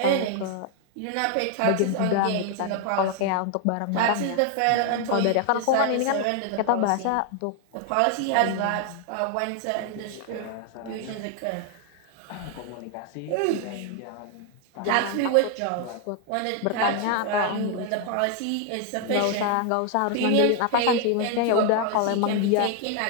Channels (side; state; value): both; different; correlation 0.00